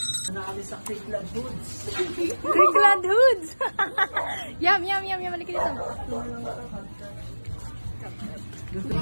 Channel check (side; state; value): both; inverted; correlation -1.00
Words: Nakali sa Creekland Hoods. Creekland Hoods! Yum, yum, yum, yum. Halika dito.